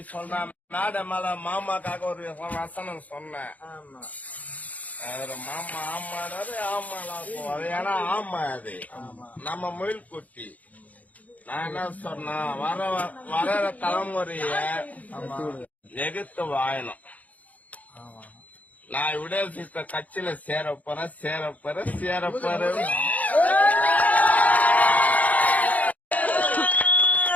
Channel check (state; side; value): late; right; 0.074 ms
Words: மேட மேல மாமாக்காக ஒரு வசனம் சொன்னேன். மாமா ஆமாடாரு ஆமாடா அது ஏன்னா ஆமா அது நம்ம முயல் குட்டி. நான் என்ன சொன்னா வர தலைமுறைய எதிர்த்து வாயணும். நான் விடுதலை கட்சியில சேரப்போறேன்.